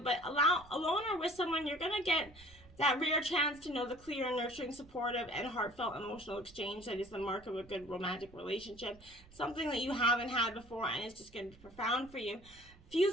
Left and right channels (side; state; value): right; noise; rumble, 23 dB below the sound